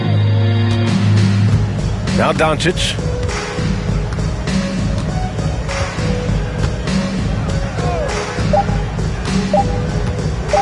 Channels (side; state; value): both; identical; correlation 1.00